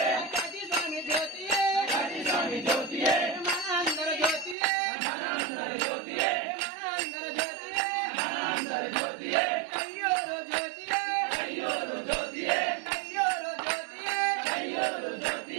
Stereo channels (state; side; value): drops out; left; at 4.5 s